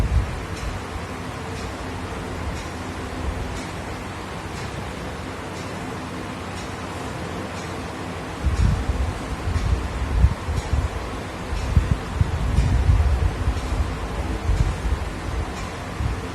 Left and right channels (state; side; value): identical; both; correlation 1.00